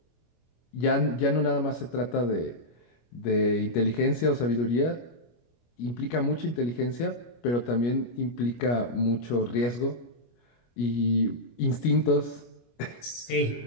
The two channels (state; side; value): late; right; 25 ms